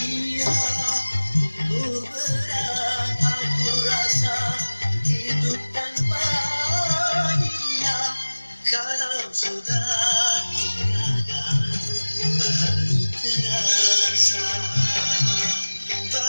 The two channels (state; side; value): inverted; both; correlation -1.00